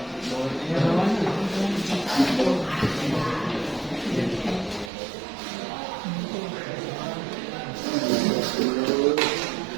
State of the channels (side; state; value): left; drops out; at 4.9 s